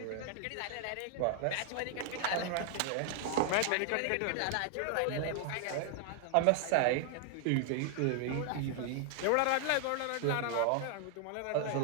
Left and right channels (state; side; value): different; both; correlation 0.00